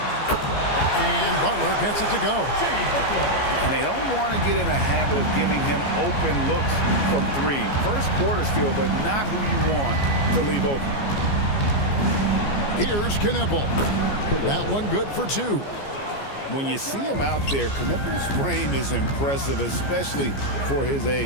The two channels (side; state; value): right; late; 14 ms